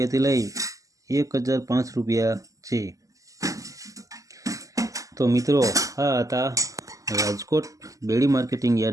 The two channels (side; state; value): left; late; 0.16 ms